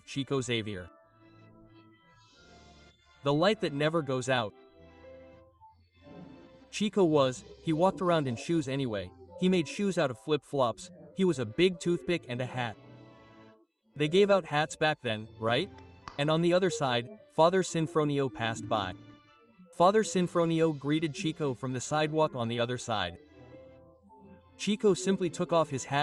Chico Xavier. The light that never goes out. Chico he walked around in shoes anyway. He made shoes out of flip-flops. He was a big toothpick and a hat. They gave out hats back then, right? And on the other side, Father Sinfronio passed by. Father Sinfronio greeted Chico from the sidewalk on the other side. Chico simply took off his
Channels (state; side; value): identical; both; correlation 1.00